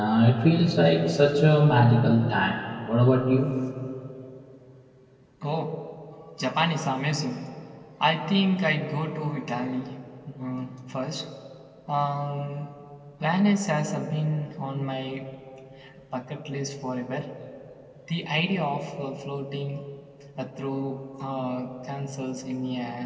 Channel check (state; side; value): identical; both; correlation 1.00